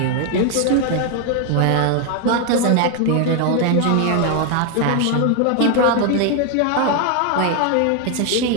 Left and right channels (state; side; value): different; both; correlation 0.01